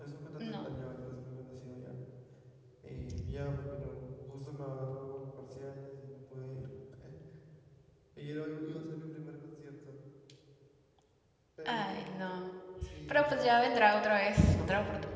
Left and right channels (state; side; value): identical; both; correlation 1.00